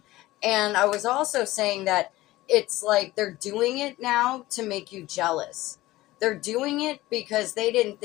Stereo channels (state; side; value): quieter; right; 17.7 dB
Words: And I was also saying that it's like they're doing it now to make you jealous. They're doing it because they didn't